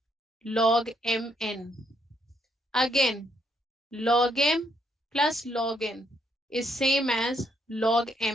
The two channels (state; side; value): normal; both; correlation 0.73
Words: log mn. Again, log m plus log n is same as log